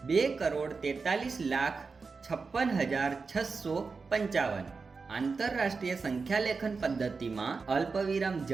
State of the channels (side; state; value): left; quieter; 4.6 dB